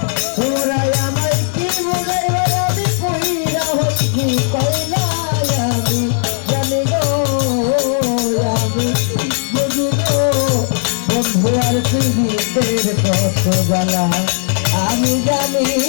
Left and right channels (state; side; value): silent; right; 69 dB below the other